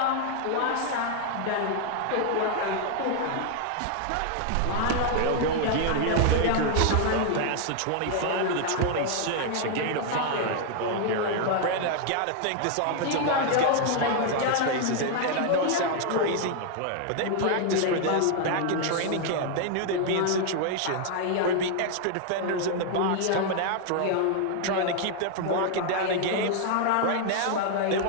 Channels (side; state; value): both; different; correlation 0.00